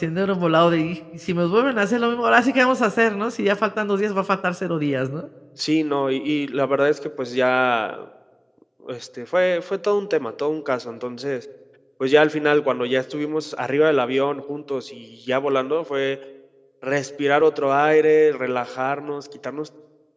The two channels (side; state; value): both; identical; correlation 1.00